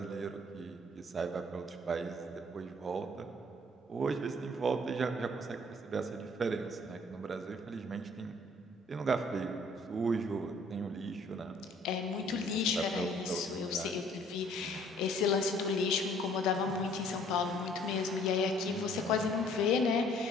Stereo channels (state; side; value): normal; both; correlation 0.58